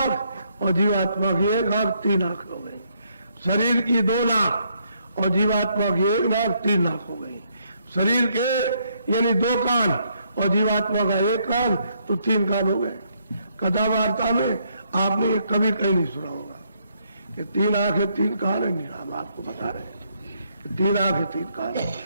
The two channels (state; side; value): inverted; both; correlation -0.72